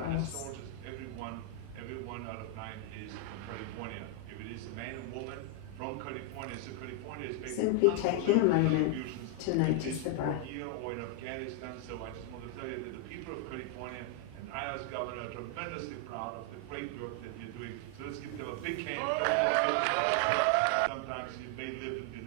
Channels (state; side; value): different; both; correlation 0.00